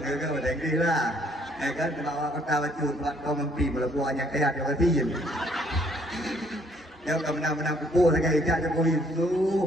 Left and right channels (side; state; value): both; normal; correlation 0.65